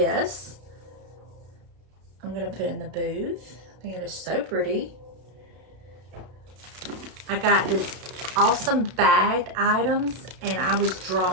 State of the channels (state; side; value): late; left; 32 ms